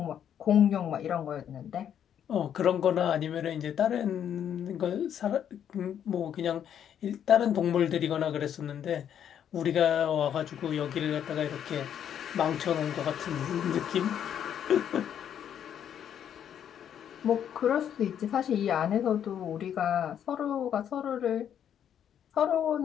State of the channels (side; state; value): right; quieter; 9.3 dB